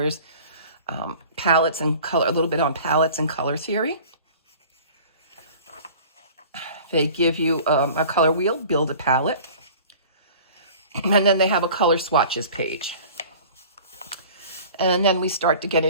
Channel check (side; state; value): both; inverted; correlation -0.45